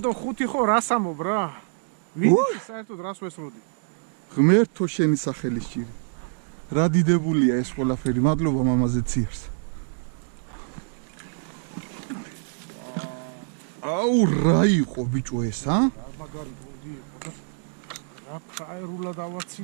და 5 ხო რას ამობ რა ვიცი საერთოდ რას ვესროდი ღმერთო შენი სახელის ჭირი რა დიდებულია ეს ყველაფერი მადლობა მამაზე ციარს აუ რა იყო ბიჭო ეს ა მაგარი გუნდი იყო და რა ფაერულა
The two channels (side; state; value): left; silent; digital silence